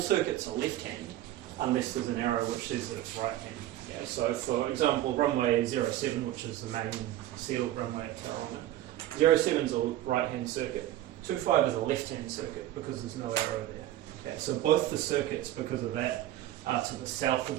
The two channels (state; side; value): quieter; left; 13.8 dB